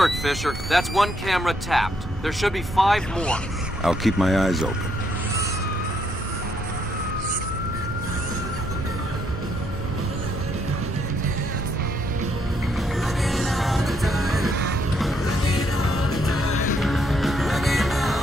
Fisher. That's one camera tapped. There should be 5 more. I'll keep my eyes open.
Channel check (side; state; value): both; normal; correlation 0.73